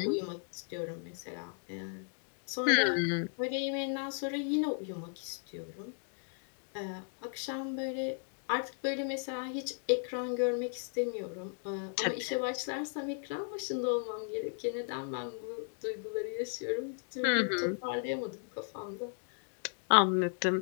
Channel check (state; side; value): silent; right; 54 dB below the other